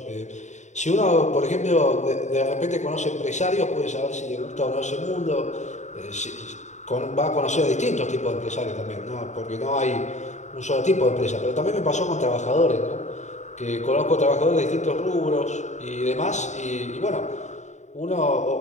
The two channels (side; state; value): right; late; 0.34 ms